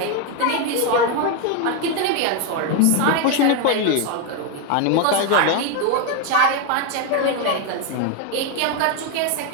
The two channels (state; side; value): different; both; correlation 0.01